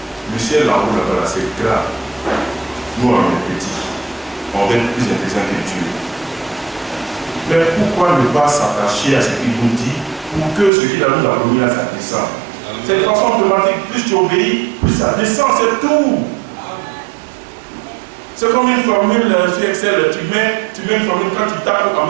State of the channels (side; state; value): left; drops out; at 10.7 s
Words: le ciel en haut là-bas, c'est grave. Nous, on est petits. On va être plus intelligent que Dieu. Mais pourquoi ne pas s'attacher à ce qu'il nous dit pour que ce qu'il a nous a promis là, ça descende? C'est une façon automatique. Plus tu obéis, plus ça descend, c'est tout. C'est comme une formule sur Excel. Tu mets une formule, quand tu tapes en